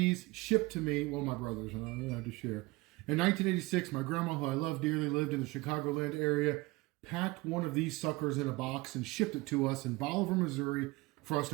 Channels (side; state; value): left; quieter; 22.8 dB